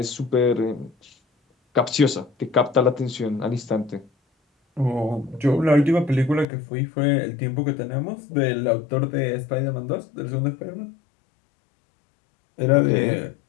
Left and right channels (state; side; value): drops out; right; at 6.5 s